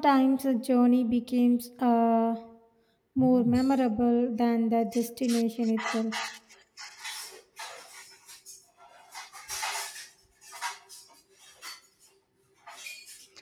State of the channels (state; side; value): identical; both; correlation 1.00